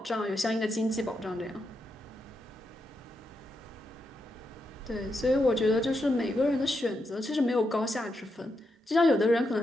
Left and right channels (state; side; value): normal; both; correlation 0.84